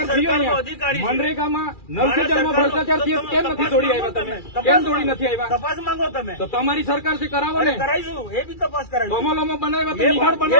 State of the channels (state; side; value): late; right; 2.4 ms